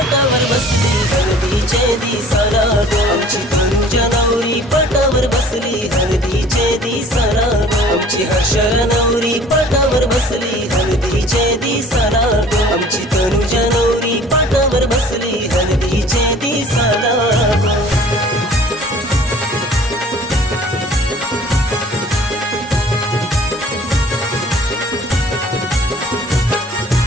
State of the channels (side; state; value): both; normal; correlation 0.50